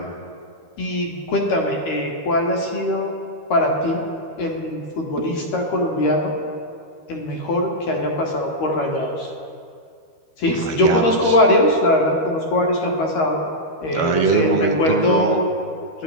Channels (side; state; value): right; late; 13 ms